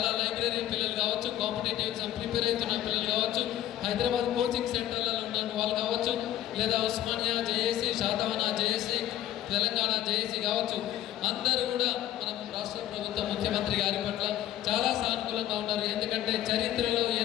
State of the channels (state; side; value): quieter; right; 12.8 dB